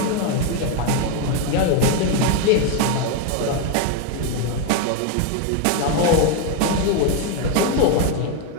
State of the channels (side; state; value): both; different; correlation 0.01